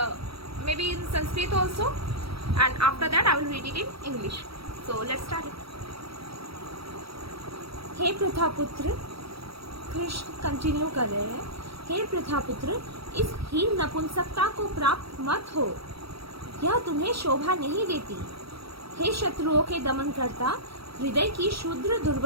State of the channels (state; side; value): late; left; 0.76 ms